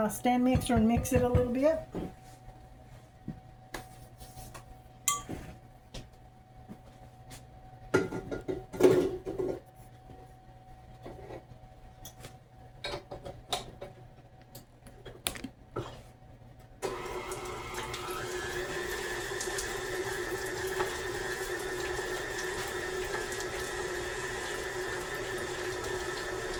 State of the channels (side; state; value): both; identical; correlation 1.00